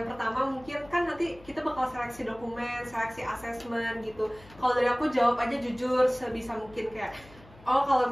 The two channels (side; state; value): left; noise; hum, 22 dB below the sound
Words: pertama mungkin kan nanti kita bakal seleksi dokumen, seleksi asesmen gitu. Kalau dari aku jawab aja jujur sebisa mungkin kayak, kalau